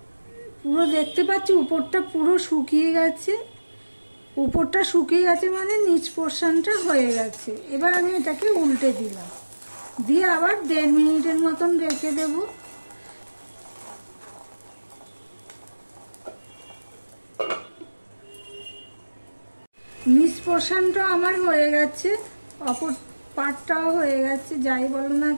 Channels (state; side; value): inverted; both; correlation -1.00